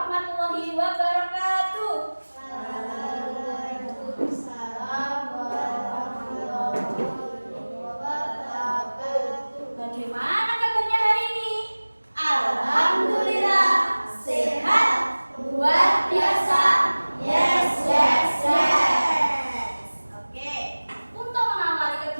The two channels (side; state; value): both; inverted; correlation -1.00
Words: wabarakatuh. Waalaikumsalam warahmatullahi wabarakatuh. Bagaimana kabarnya hari ini? Alhamdulillah, sehat, luar biasa. Yes, yes, yes. Oke, untuk mengawali